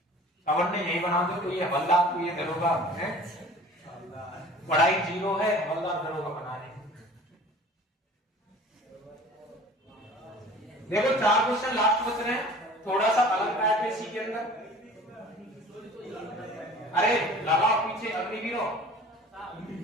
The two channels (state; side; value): normal; both; correlation 0.45